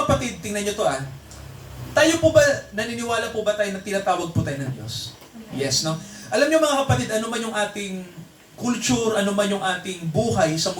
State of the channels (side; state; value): both; identical; correlation 1.00